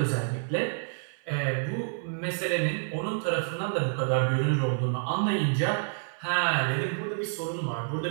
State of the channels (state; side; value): silent; left; 56 dB below the other